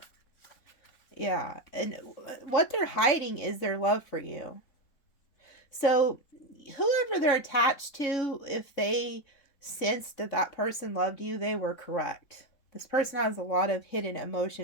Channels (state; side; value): late; right; 3.6 ms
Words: Yeah. And what they're hiding is their love for you. So whoever they're attached to, if they sensed that that person loved you, they were correct. This person has a lot of hidden